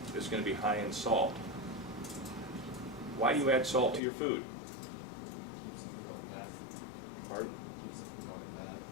is going to be high in salt. Why do you add salt to your food? Pardon?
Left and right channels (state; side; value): drops out; right; at 4.0 s